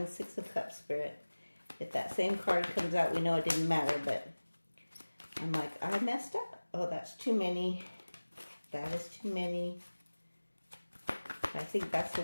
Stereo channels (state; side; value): inverted; both; correlation -1.00